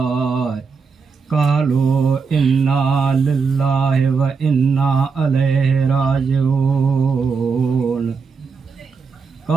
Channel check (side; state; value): left; quieter; 5.1 dB